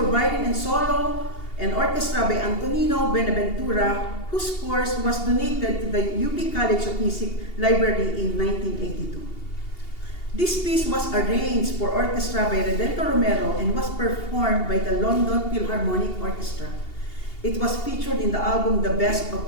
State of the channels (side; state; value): right; late; 2.8 ms